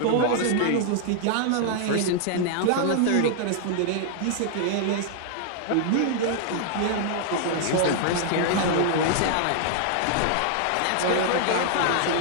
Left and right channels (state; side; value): different; both; correlation -0.01